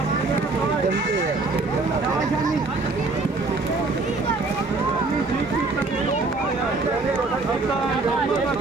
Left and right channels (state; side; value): quieter; left; 3.5 dB